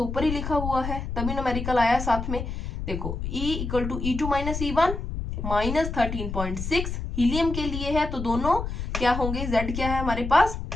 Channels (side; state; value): left; noise; rumble, 5 dB below the sound